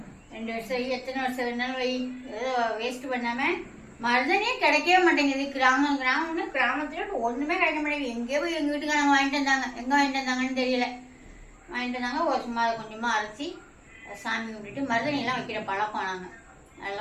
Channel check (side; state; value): both; identical; correlation 1.00